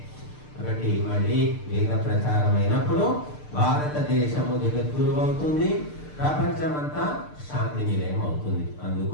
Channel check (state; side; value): late; right; 6.7 ms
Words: కాబట్టి మళ్ళీ వేద ప్రచారం అయినప్పుడు భారతదేశము జగద్గురు అవుతుంది, ప్రపంచమంతా శాంతి నిలయం అవుతుంది.